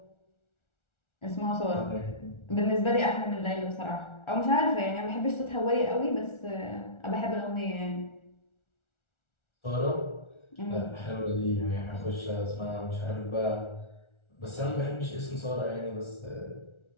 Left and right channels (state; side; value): late; right; 1.4 ms